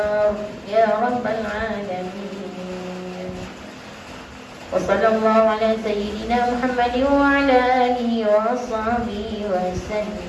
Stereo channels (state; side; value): identical; both; correlation 1.00